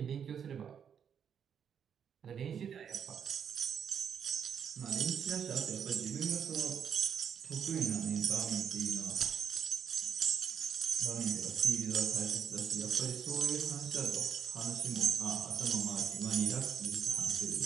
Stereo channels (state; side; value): quieter; left; 7.9 dB